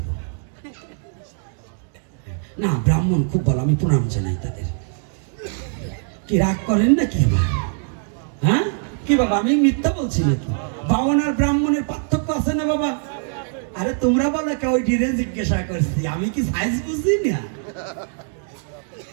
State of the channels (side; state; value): left; silent; 58 dB below the other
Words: না। ব্রাহ্মণ খুব ভালো, আমি প্রণাম জানাই তাদের। কি রাগ করেন না কি? হ্যাঁ কি বাবা, আমি মিথ্যা বলছি নাকি? বাউন আর ব্রাহ্মণের পার্থক্য আছে না বাবা? আরে তোমরা বলো কে? ওই ডিরে জিজ্ঞাসা করছি, আমি কি সাইজ বুঝি না?